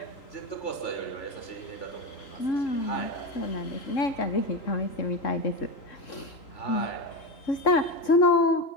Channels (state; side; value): late; right; 3.7 ms